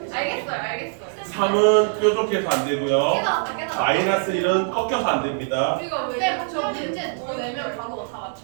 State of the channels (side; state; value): left; silent; digital silence